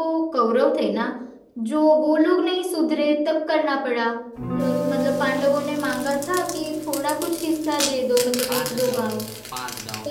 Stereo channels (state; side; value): identical; both; correlation 1.00